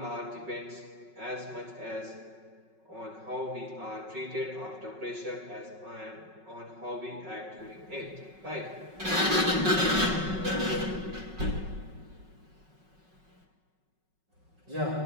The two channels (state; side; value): late; left; 5.4 ms